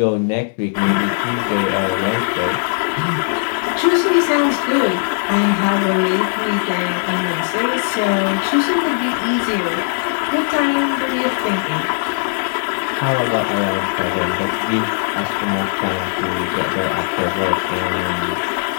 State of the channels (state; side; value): silent; right; digital silence